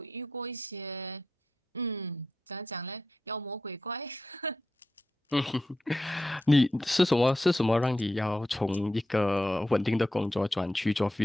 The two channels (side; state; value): both; normal; correlation 0.87